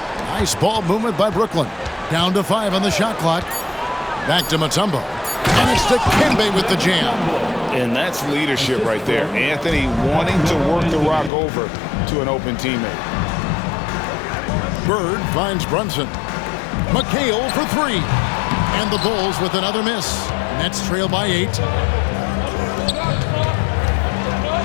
Nice ball movement by Brooklyn. Down to 5 on the shot clock. Back to Mutombo. And it's Dikembe with the jam. And that's leadership right there. Anthony wanting to work the rock over to an open teammate. Bird finds Brunson. McHale for 3. And the Bulls with another miss. Nets trail by 8.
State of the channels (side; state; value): right; drops out; at 11.3 s